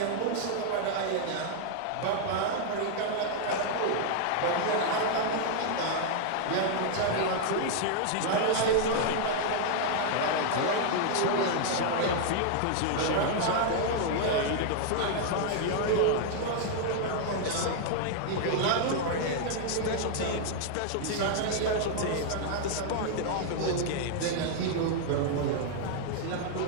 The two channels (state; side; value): different; both; correlation 0.00